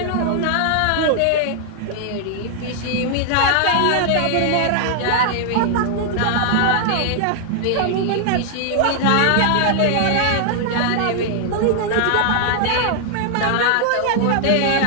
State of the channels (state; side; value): different; both; correlation 0.00